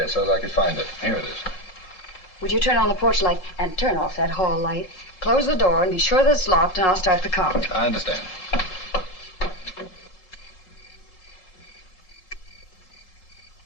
so that I could find it. Here it is. Would you turn on the porch light and turn off that hall light? Close the door and be sure that it's locked, and I'll start the car. I understand.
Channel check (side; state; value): right; late; 3.8 ms